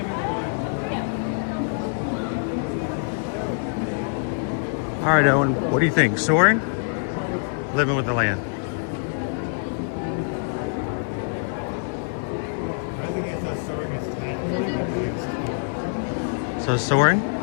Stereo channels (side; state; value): right; silent; digital silence